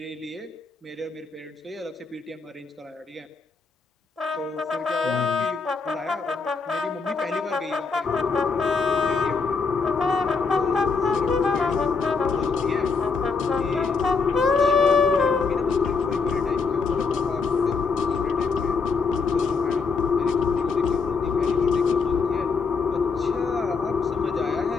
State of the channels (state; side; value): quieter; right; 4.8 dB